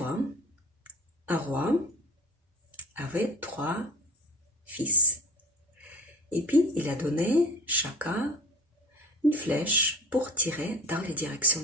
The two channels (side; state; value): both; normal; correlation 0.39